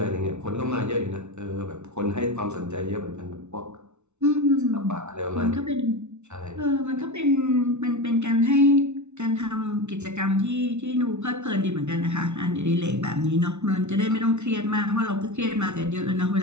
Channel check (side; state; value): left; late; 0.82 ms